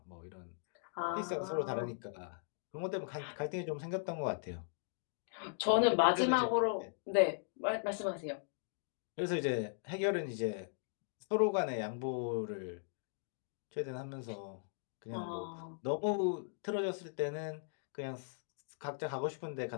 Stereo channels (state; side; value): silent; right; digital silence